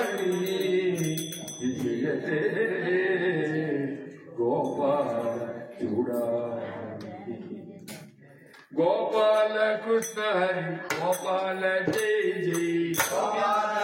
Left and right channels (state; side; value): identical; both; correlation 1.00